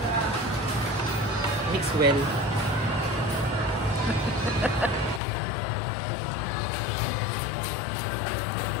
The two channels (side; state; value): right; drops out; at 5.2 s